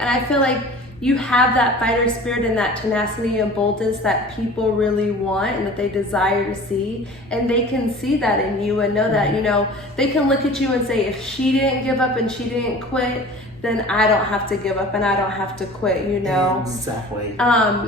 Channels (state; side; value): normal; both; correlation 0.42